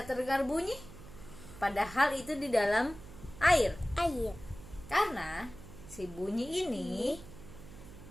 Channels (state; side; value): noise; right; hum, 16 dB below the sound